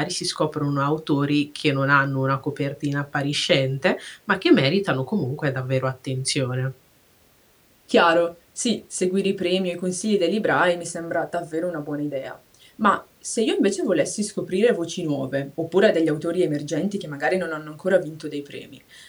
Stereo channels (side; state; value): both; identical; correlation 1.00